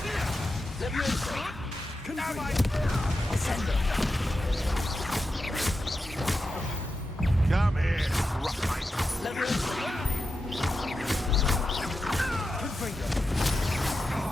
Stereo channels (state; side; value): normal; both; correlation 0.90